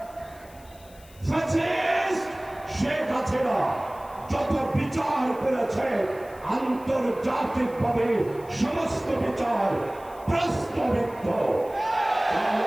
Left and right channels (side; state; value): left; noise; hiss, 25 dB below the sound